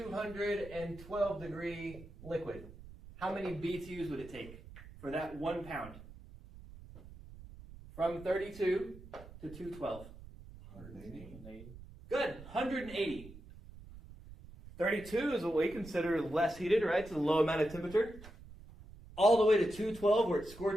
degree liquid? How many BTUs would it take for that 1 pound? From 32 to 212. 180. Good, 180. 32 is what we consider less heated, right? It's a low amount of temperature. All the way to 212 where it's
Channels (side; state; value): right; noise; rumble, 17 dB below the sound